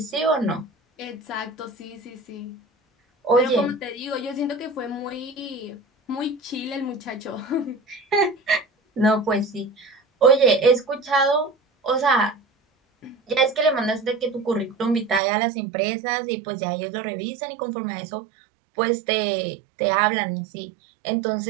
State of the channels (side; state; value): left; drops out; at 15.2 s